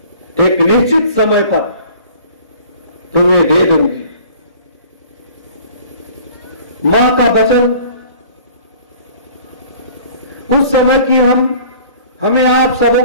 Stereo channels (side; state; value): both; inverted; correlation -0.48